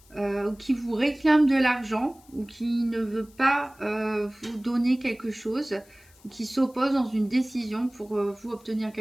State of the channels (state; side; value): noise; left; hiss, 28 dB below the sound